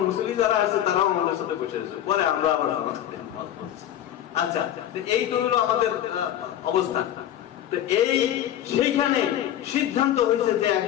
মুসলিম যারা আছে তারাও আমাদের সাথে বসে রয়েছে। পরে আমরা আবার নামাজ পড়ছি। আচ্ছা, এই তো হলো আমাদের অবস্থা। তো সেইখানে সিদ্ধান্ত হয়েছে যে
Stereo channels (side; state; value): right; quieter; 11.6 dB